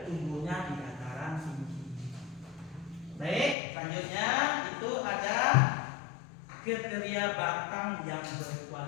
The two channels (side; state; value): right; drops out; at 3.6 s